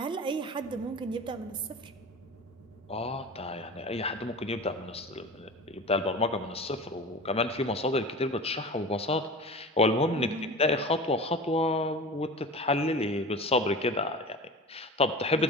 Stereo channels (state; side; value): normal; both; correlation 0.34